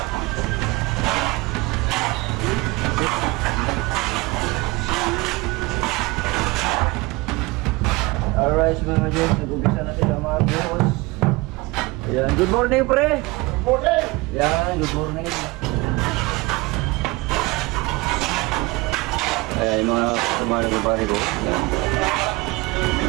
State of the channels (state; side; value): quieter; left; 23.3 dB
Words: mga ka-joks, nag-umpisa na sila mga buhos. Ayan, good morning pre! Good morning! Ayan, good morning. Ayan, yung mga kumano ng pare ko. Ayan. Mga